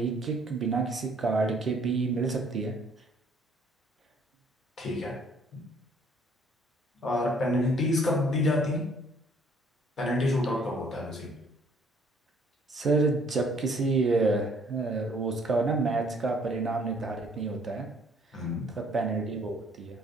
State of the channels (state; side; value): normal; both; correlation 0.61